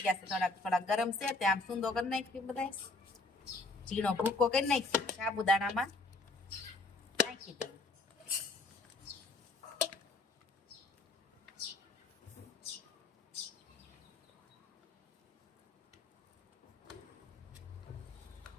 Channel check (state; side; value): quieter; right; 3.2 dB